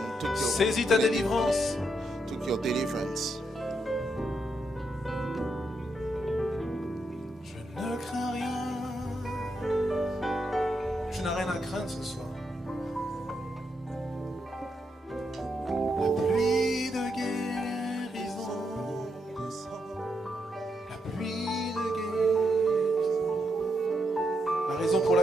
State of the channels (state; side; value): normal; both; correlation 0.81